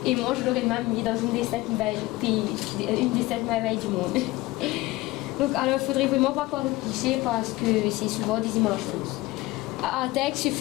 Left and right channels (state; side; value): quieter; right; 19.7 dB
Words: Et moi je l'aurais même mis dans une des 7 merveilles du monde. Donc alors il ne faudrait vraiment pas croire le cliché, parce que c'est souvent des images fausses. À Artec, ce